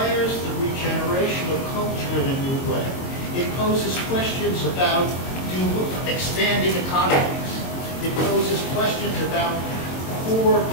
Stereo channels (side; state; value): right; late; 22 ms